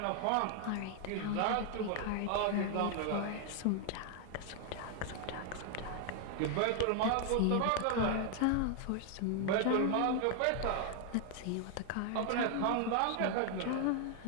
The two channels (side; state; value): both; different; correlation 0.00